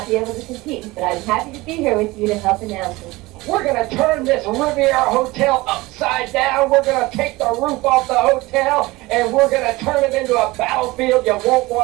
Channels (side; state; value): left; quieter; 20.9 dB